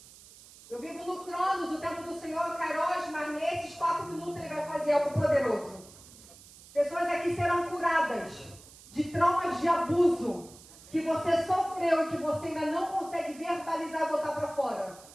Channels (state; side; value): noise; right; hiss, 21 dB below the sound